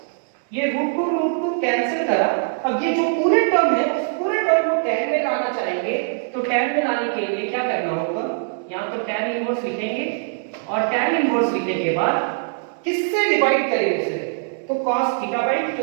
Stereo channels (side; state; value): left; silent; digital silence